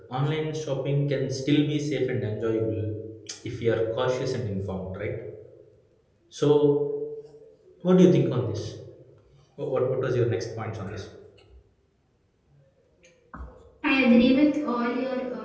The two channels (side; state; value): both; identical; correlation 1.00